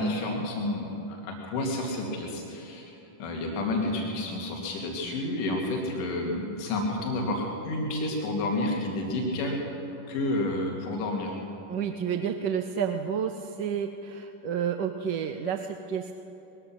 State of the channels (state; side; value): late; right; 11 ms